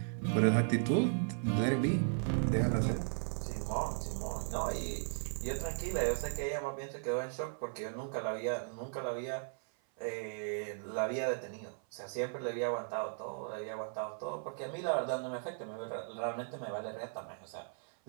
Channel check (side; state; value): left; silent; 53 dB below the other